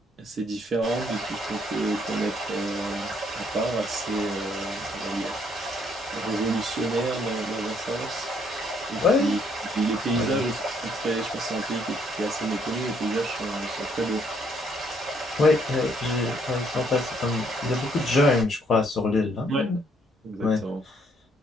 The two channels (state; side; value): normal; both; correlation 0.68